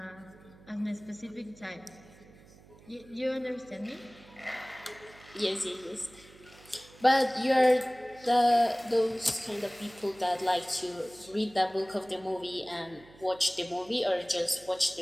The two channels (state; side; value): noise; right; hum, 23 dB below the sound